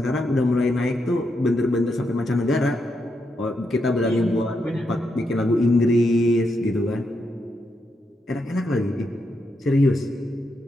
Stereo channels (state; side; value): normal; both; correlation 0.82